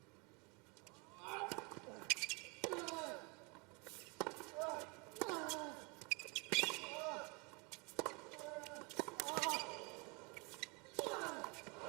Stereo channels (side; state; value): left; quieter; 26.8 dB